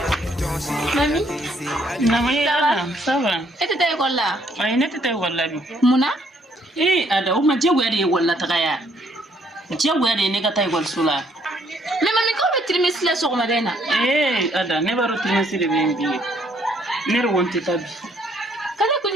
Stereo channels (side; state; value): both; normal; correlation 0.67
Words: Mami, Ça va. et tu t'es là? Ay, ne t'étais wala bi. Muna? Ada uma jagwari wala tagaya. Jagwari ne ga tay wal sula. Mais mami, comment tu me laisses sur madena? Ada ne baro trimesi de bembi. Ne ronte tabi. Kala ko